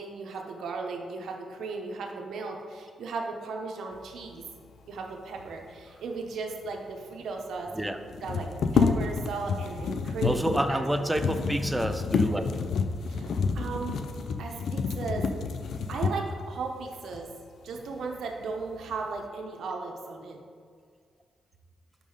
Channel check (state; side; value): normal; both; correlation 0.78